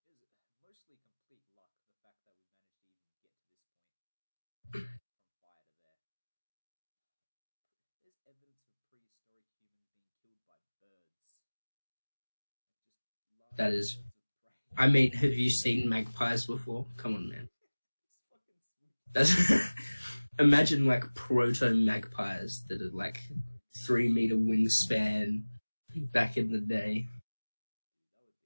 It was mostly complete luck, the fact that we managed to even get to this point from fire to there. There's evidence of prehistoric humans being killed by birds. Like, just large That is birds of prey. I mean, have you seen magpies before? Come on, man. It's fucking sweet. That's imagine like proto magpies that are like 3 meter wingspan back in the day.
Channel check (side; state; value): both; inverted; correlation -1.00